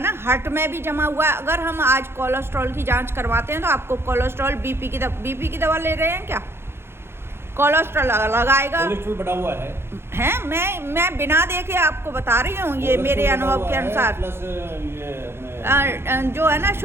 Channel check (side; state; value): left; late; 0.12 ms